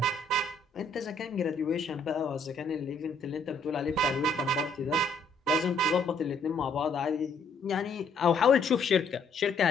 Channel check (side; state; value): right; quieter; 3.2 dB